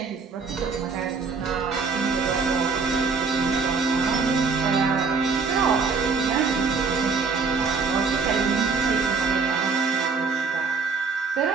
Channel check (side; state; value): left; quieter; 4.6 dB